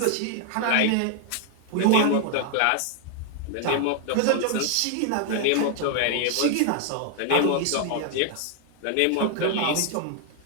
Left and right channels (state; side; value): different; both; correlation 0.00